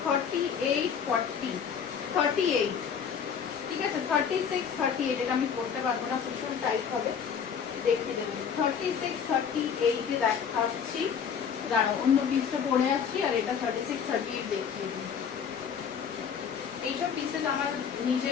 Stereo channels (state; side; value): quieter; right; 7.2 dB